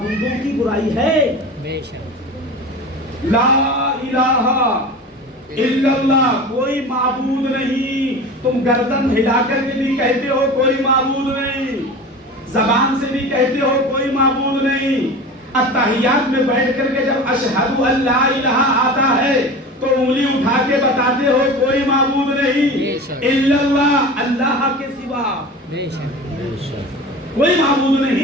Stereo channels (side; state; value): both; normal; correlation 0.33